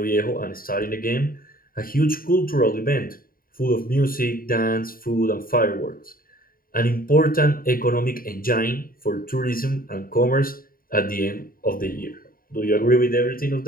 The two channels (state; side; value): late; right; 0.42 ms